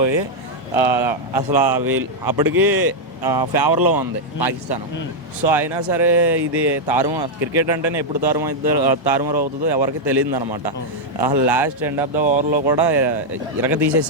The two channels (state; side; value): normal; both; correlation -0.02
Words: అసలు వీళ్ళు అప్పటికి ఫేవర్లో ఉంది పాకిస్తాన్. సో అయినా సరే ఇది క్రికెట్ అంటేనే ఎప్పుడు తారుమారు అవుతుందో ఎవరికి తెలియదు అనమాట. లాస్ట్ ఎండ్ ఆఫ్ ద ఓవర్లో కూడా ఇరగ